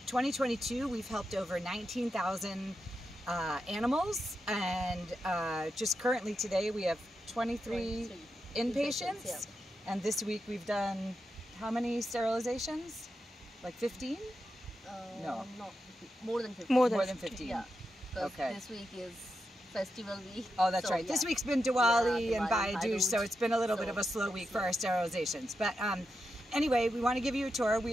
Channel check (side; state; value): both; normal; correlation 0.87